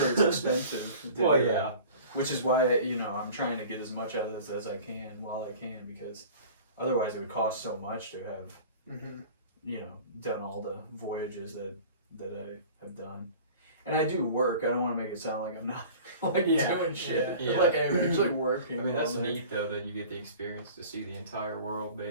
it's expensive. Well, yeah. Which is why, you know, I'm trying to get as much out of this as I can while I can, because otherwise it would cost so much to have, you know, done all the voyages that I have done. And I do work. I don't want to make it sound like I'm not like doing shit. Yeah. Like I'm actually working. I mean, that's neat though that you get the experience to see the entire world,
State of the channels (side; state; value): both; inverted; correlation -0.42